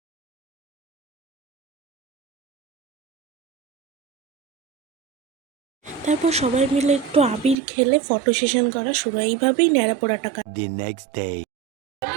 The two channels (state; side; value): drops out; left; at 7.6 s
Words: তারপর সবাই মিলে একটু আবির খেলে ফটো সেশন করা শুরু। এইভাবেই ন্যাড়া পোড়াটা The next day.